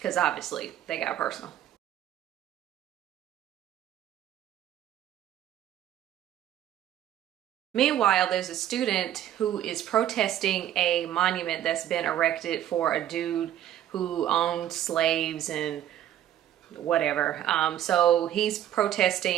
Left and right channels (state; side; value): quieter; left; 11.5 dB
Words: obviously they got personal. Meanwhile, there's a student who is protesting a monument that's been erected for a dude who owned slaves and whatever. So he's